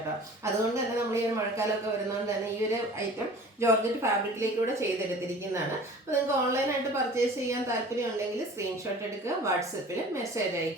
അതുകൊണ്ട് തന്നെ നമ്മൾ ഈ ഒരു മഴക്കാലമൊക്കെ വരുന്നതുകൊണ്ട് തന്നെ ഈ ഒരു ഐറ്റം ജോർജറ്റ് ഫാബ്രിക്കിലേക്കൂടെ ചെയ്തെടുത്തിരിക്കുന്നതാണ്. അപ്പോൾ നിങ്ങൾക്ക് ഓൺലൈനായിട്ട് പർച്ചേസ് ചെയ്യാൻ താല്പര്യം ഉണ്ടെങ്കിൽ സ്ക്രീൻഷോട്ട് എടുക്കുക, വാട്സപ്പിൽ മെസ്സേജ്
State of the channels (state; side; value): normal; both; correlation 0.43